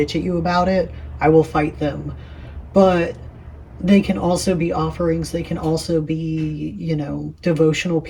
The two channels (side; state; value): both; identical; correlation 1.00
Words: at you about it, I will fight them. But they can also be offerings, they can also be, devotional